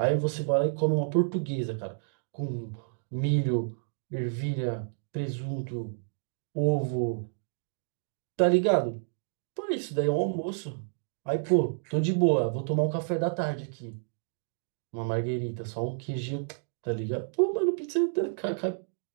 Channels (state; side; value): silent; left; digital silence